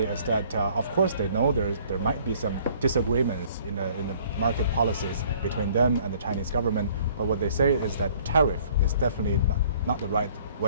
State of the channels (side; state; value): both; inverted; correlation -0.57